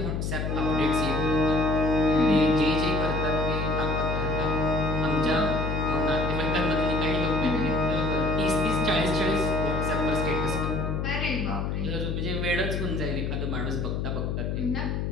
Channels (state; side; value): noise; left; hum, 1 dB below the sound